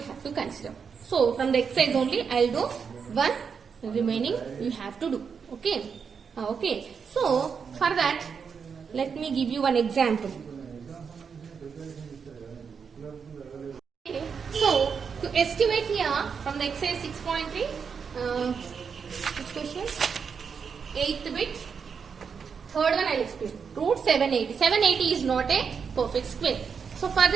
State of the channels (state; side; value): quieter; left; 6.2 dB